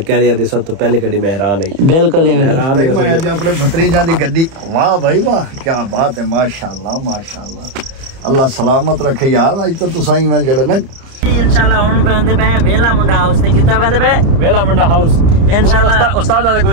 कह रही थी सब तो पहली गड्डी में हैरान है बिल्कुल हैरान है मैं आज अपने भतीजा दी गड्डी वाह भाई वाह क्या बात है माशाल्लाह माशाल्लाह अल्लाह सलामत रखे यार आज तो तुसाई मैं जड़ा ना इंशाल्लाह हुन पहनदे पे वेला मुंडा हाउस ते कितना पहनदे पे वेला मुंडा हाउस इंशाल्लाह उस्ताद आदे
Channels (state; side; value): late; left; 30 ms